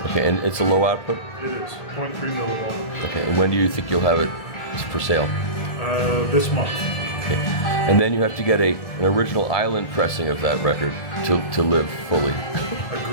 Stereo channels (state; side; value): late; right; 1.7 ms